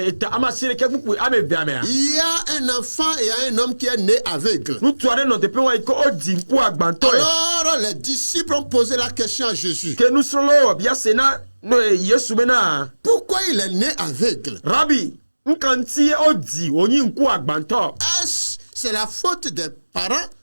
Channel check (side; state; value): both; inverted; correlation -1.00